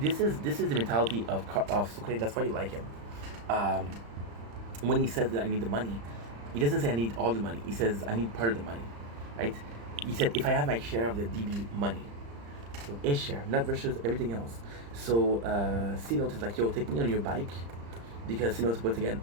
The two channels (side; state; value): left; late; 35 ms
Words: this is the mentality of Sucre. That's why you like him. Um, when he says that I need the money, he doesn't say I need all the money. He says I need part of the money, right? He said if I have my share of the DB money, so his share, not versus everything else. So C-Note is like, yo, take me on your bike, because C-Note once again